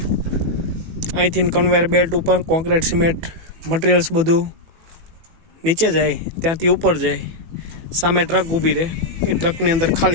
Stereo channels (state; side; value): late; left; 18 ms